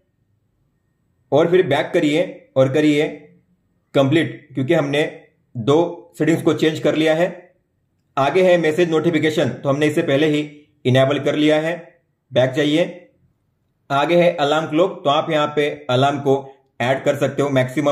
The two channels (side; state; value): both; identical; correlation 1.00